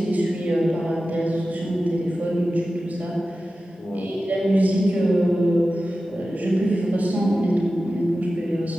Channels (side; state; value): both; normal; correlation 0.94